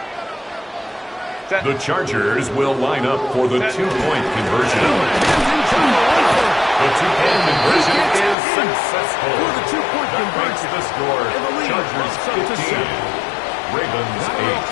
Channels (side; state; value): right; drops out; at 8.3 s